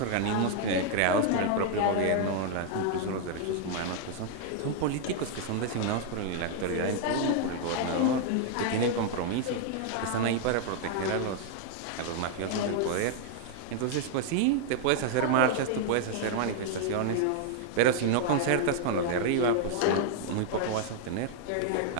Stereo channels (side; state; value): both; different; correlation 0.00